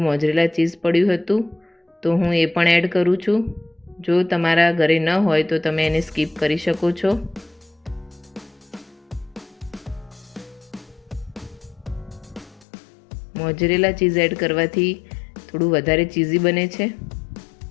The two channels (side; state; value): right; drops out; at 12.7 s